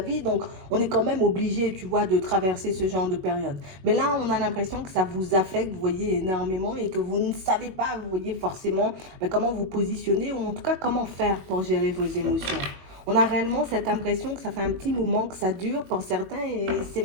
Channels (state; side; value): late; left; 21 ms